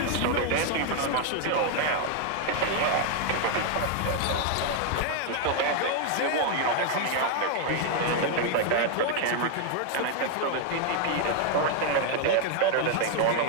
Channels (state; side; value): different; both; correlation 0.00